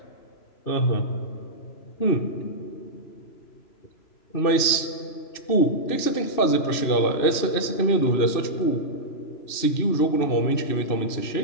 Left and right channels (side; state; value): right; late; 2.6 ms